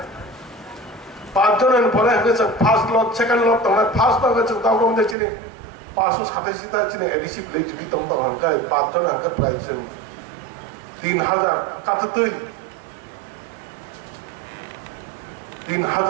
পাঁচজনের পরে ফার্স্ট লট সেকেন্ড লট তোমার ফার্স্ট লট তাও কম দেখছি 587টা চিনি এডিসি ভিলেজ যদি তোমার হাঙ্কায় পাঁচজন হাঙ্কা প্রায় 3000 কাটাতেই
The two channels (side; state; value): left; drops out; at 5.2 s